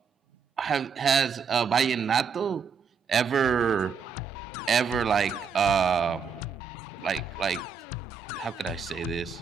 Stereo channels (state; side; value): quieter; left; 6.1 dB